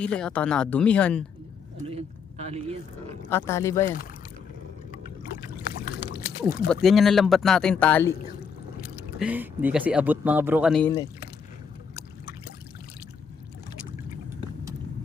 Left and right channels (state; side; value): quieter; right; 6.3 dB